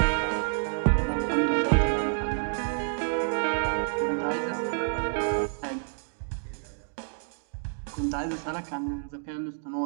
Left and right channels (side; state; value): left; silent; digital silence